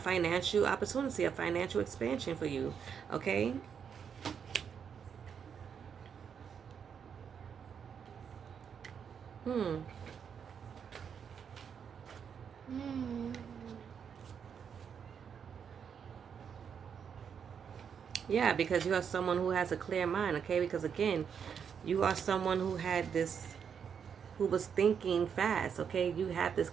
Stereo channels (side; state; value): left; quieter; 7.3 dB